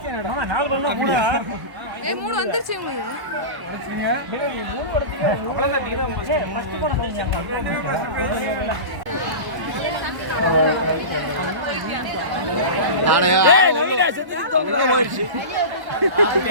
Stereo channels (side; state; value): left; late; 1.0 ms